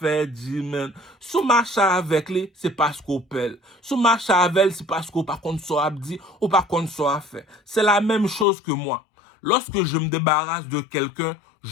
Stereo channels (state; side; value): drops out; right; at 8.5 s